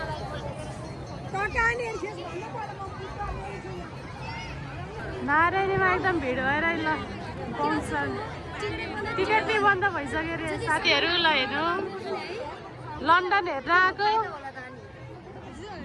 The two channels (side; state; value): both; identical; correlation 1.00